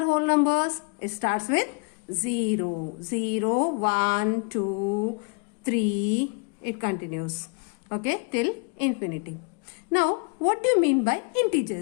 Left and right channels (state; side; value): quieter; right; 34.7 dB